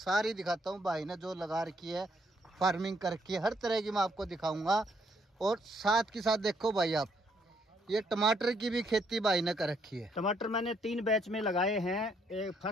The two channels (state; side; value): normal; both; correlation 0.71